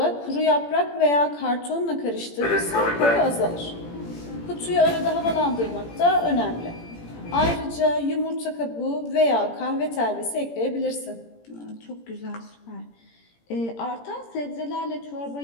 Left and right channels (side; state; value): right; late; 17 ms